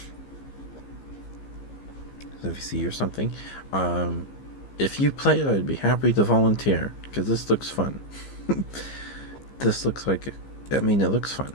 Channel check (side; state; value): right; late; 15 ms